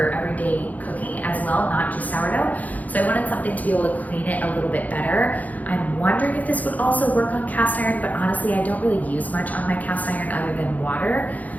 everyday cooking as well, not just sourdough. So I wanted something to be able to clean it a little bit better. I'm wondering if this would also work on cast iron, but honestly, I don't really use much on my cast iron other than water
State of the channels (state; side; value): late; right; 0.078 ms